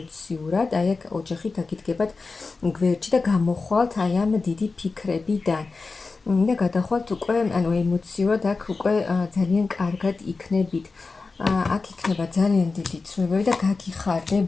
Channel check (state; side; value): quieter; right; 4.1 dB